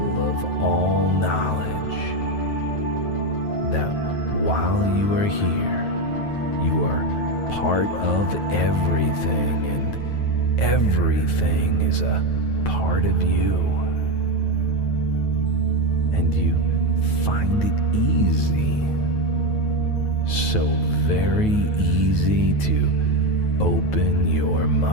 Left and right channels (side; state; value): right; late; 9.3 ms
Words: of all knowledge, that while you are here, you are part of everything, and everything is a part of you. And you find it easy, so very easy to open your